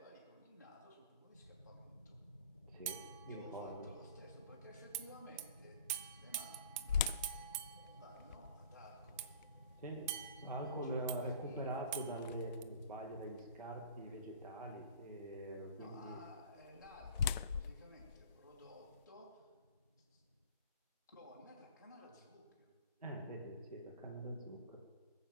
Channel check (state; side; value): inverted; both; correlation -0.43